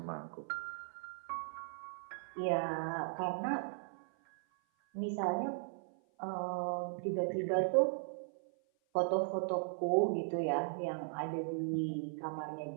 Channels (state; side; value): silent; left; 53 dB below the other